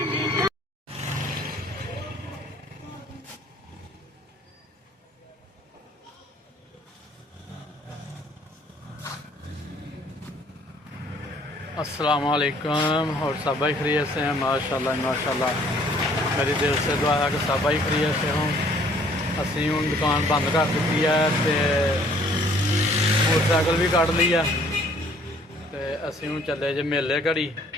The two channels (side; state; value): both; normal; correlation 0.59